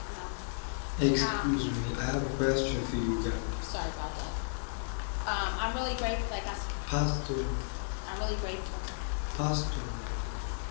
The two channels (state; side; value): silent; right; digital silence